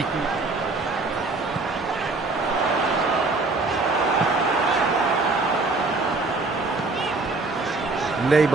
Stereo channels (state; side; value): quieter; left; 3.5 dB